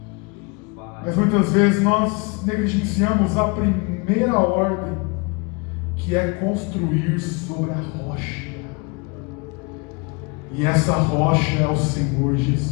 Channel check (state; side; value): quieter; right; 30.0 dB